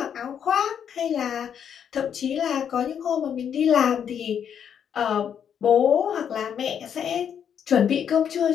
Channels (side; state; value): right; quieter; 8.3 dB